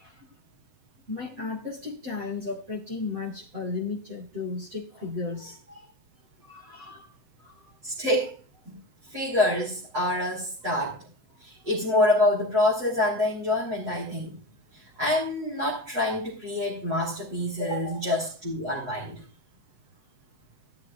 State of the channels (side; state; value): left; late; 7.8 ms